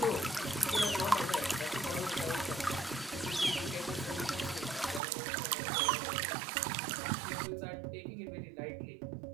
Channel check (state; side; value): drops out; left; at 5.0 s